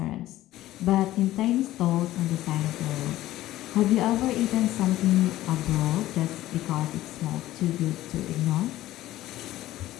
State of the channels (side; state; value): right; quieter; 15.1 dB